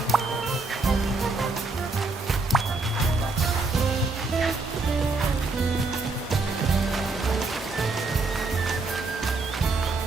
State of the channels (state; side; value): quieter; left; 3.7 dB